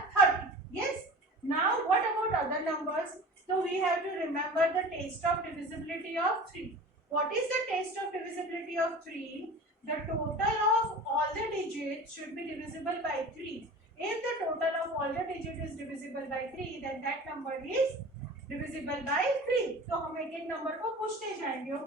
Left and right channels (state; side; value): normal; both; correlation 0.38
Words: 30. Yes. Now what about other numbers? So we have to remember the test of divisibility of 3. What is the test of divisibility of 3? The total of all the digits should be divisible by 3. If the total of all the digits is divisible by 3, then that number is divisible by 3. So हम एक एक number को पूछते जाएंगे.